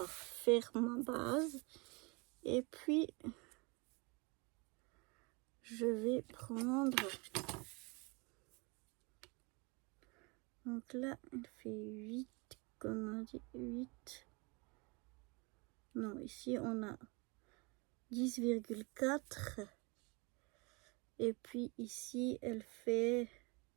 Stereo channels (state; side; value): quieter; left; 28.9 dB